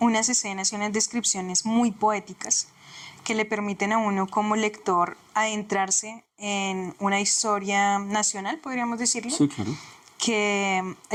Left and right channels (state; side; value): identical; both; correlation 1.00